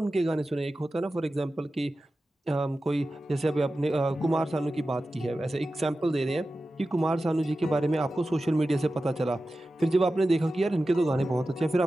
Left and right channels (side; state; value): both; normal; correlation 0.94